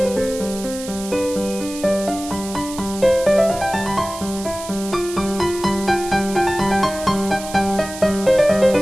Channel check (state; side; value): noise; right; hiss, 12 dB below the sound